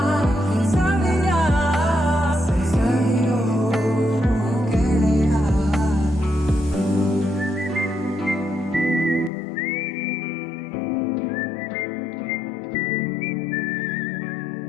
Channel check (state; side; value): drops out; right; at 9.3 s